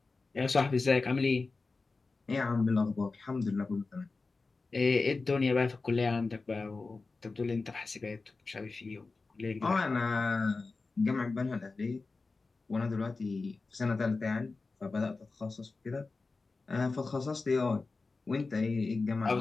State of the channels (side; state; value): right; quieter; 3.9 dB